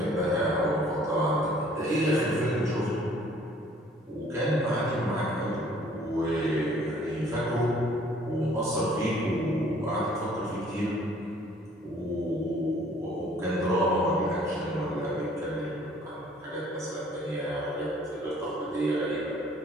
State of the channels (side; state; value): both; normal; correlation 0.57